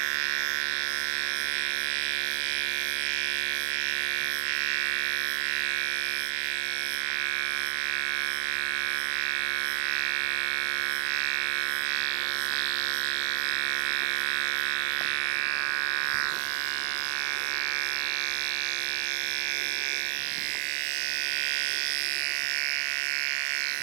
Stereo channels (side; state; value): left; silent; digital silence